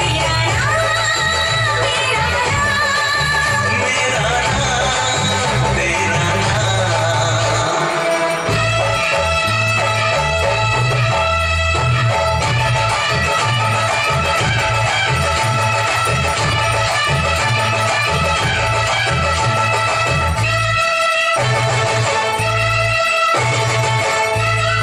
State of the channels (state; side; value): identical; both; correlation 1.00